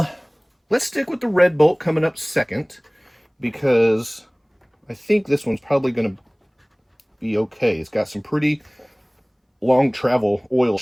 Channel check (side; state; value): both; identical; correlation 1.00